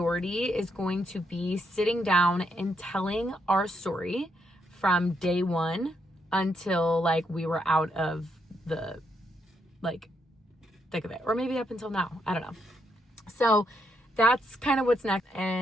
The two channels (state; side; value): normal; both; correlation 0.78